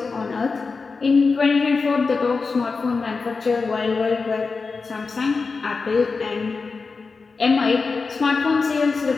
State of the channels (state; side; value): quieter; right; 4.5 dB